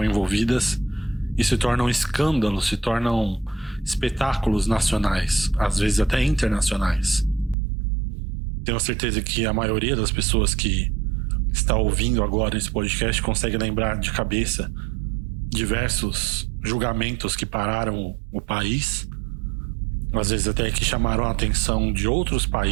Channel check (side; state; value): left; drops out; at 7.6 s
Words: envolvidas e se tornam escândalos, se tornam espetáculos nacionais, às vezes até internacionais. Tenho certeza que a maioria das pessoas que está ouvindo agora esse podcast consegue lembrar de cabeça diversos julgamentos que pararam o país, às vezes até que chamaram a atenção de outros